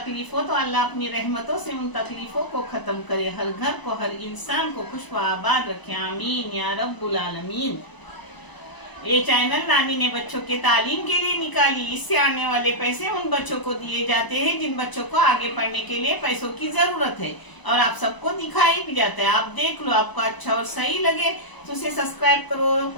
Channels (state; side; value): late; right; 1.0 ms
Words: हो तो अल्लाह अपनी रहमतों से उन तकलीफों को खत्म करे, हर घर को हर इंसान को खुश व आबाद रखे। आमीन या रब्बुल आलमीन। ये चैनल नानी ने बच्चों के तालीम के लिए निकाली। इससे आने वाले पैसे उन बच्चों को दिए जाते हैं जिन बच्चों को आगे पढ़ने के लिए पैसों की जरूरत है, और आप सबको दिखाई भी जाता है। आप देख लो, आपको अच्छा और सही लगे तो उसे सब्सक्राइब करो,